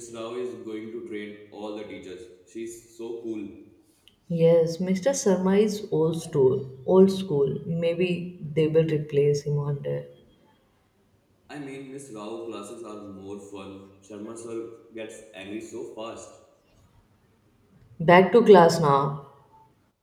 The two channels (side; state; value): both; identical; correlation 1.00